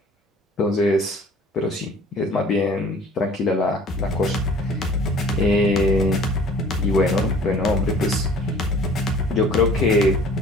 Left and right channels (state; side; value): normal; both; correlation 0.50